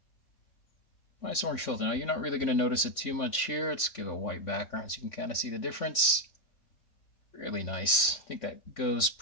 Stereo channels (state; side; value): late; right; 3.5 ms